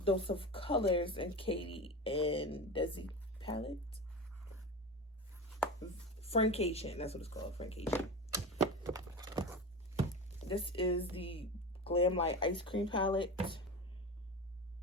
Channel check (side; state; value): both; normal; correlation 0.26